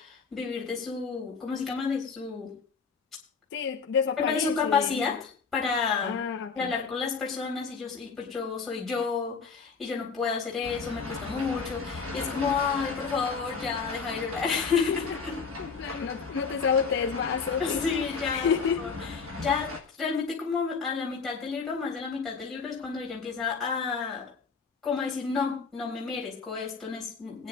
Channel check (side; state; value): right; quieter; 5.3 dB